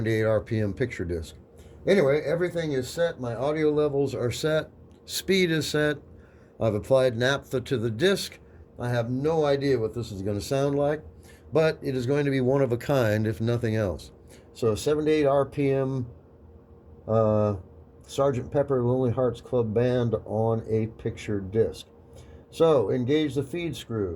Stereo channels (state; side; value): identical; both; correlation 1.00